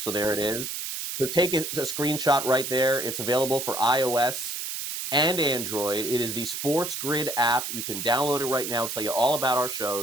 there it is. So take a screenshot right there. It's available for iOS and Android. It is the SportsGrid app. You can download it right now. I'll tell you all about our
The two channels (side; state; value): right; noise; hiss, 5 dB below the sound